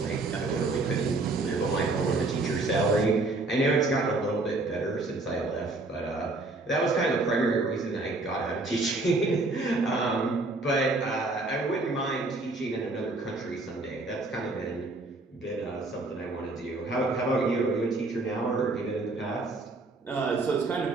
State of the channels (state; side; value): quieter; left; 3.2 dB